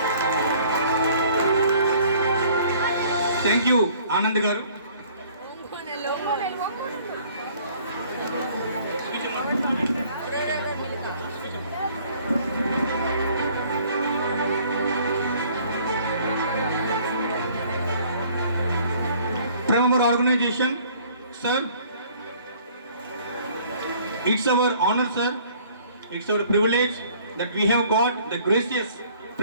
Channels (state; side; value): inverted; both; correlation -0.56